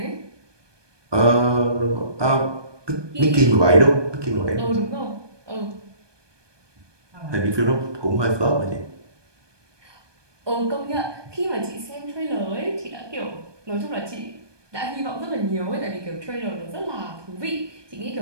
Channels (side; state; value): left; late; 1.2 ms